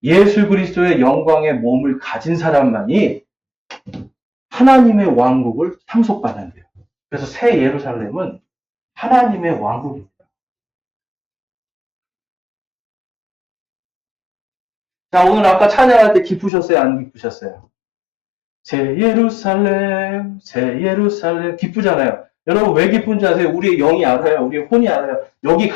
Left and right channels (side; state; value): right; drops out; at 16.5 s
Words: 예수 그리스도의 영광의 몸을 가진 사람만이 하나님의 왕국을 상속받는데요. 그래서 새 예루살렘은 하나님의 왕국입니다. 자, 오늘 아까 찬양할 때 기쁘셨어요? 안 기쁘셨어요? 새 예루살렘, 새 예루살렘. 기쁘잖아요. 여러분 왜 기쁜지 아세요? 우리의 영이 알아요. 우리의 혼이 알아요. 여기